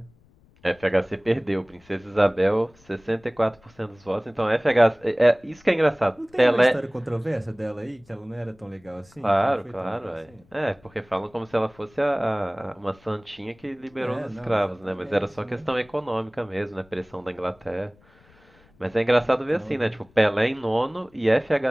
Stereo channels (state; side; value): noise; left; rumble, 30 dB below the sound